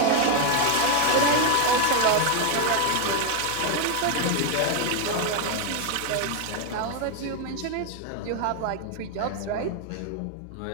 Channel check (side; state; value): both; different; correlation 0.01